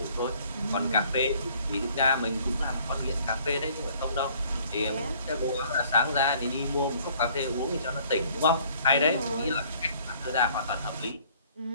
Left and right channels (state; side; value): inverted; both; correlation -0.58